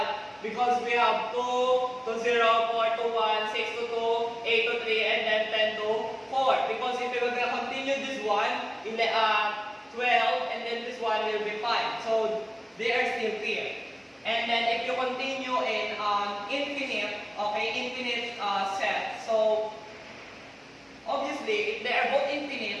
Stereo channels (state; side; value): identical; both; correlation 1.00